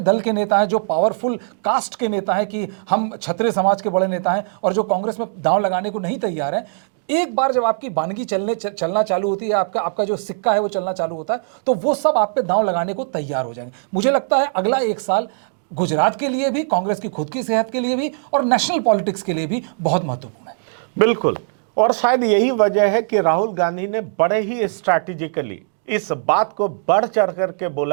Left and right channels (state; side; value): silent; left; digital silence